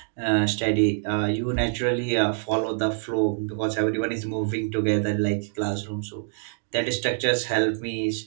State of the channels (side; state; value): left; silent; digital silence